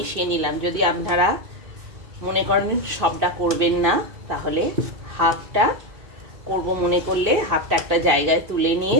নিলাম। যদি আপনারা মনে করেন সবটা করবেন না, তাহলে হাফটা করব মনে করলে হাফটা একটা জায়গায় তুলে নিয়ে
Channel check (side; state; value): left; late; 2.7 ms